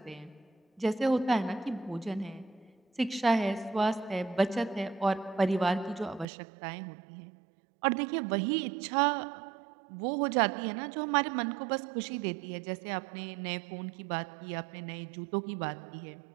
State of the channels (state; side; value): drops out; left; at 6.2 s